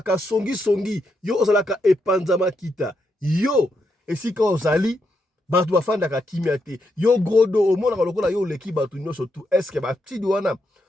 songi, yo ozalaka epanzama kita. Yo esika ozali batu bafandaka kimia te yo grodo omonaka lokola yo leki batu nyonso tu eske batidi wana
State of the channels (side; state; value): both; normal; correlation 0.81